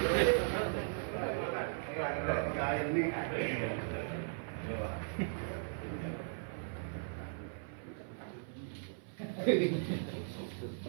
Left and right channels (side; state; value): left; silent; 53 dB below the other